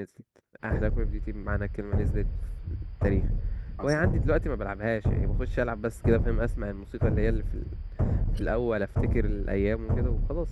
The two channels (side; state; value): both; identical; correlation 1.00